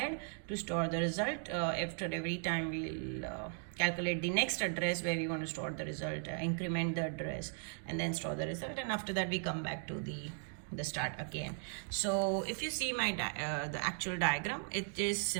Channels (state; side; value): silent; left; 53 dB below the other